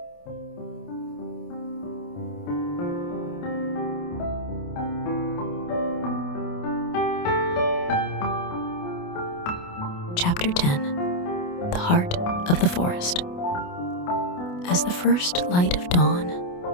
Chapter 10. The Heart of the Forest. As the first light of dawn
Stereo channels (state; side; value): late; right; 28 ms